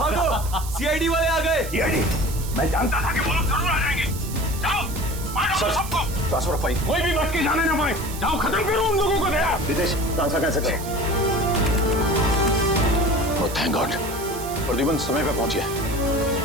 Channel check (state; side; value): noise; right; hiss, 12 dB below the sound